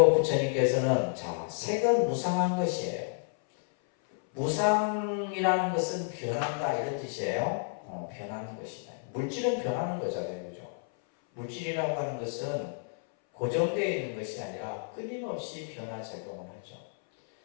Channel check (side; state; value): right; silent; 57 dB below the other